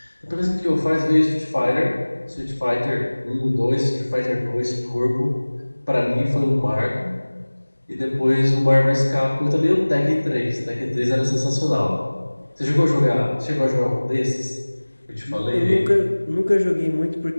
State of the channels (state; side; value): inverted; both; correlation -1.00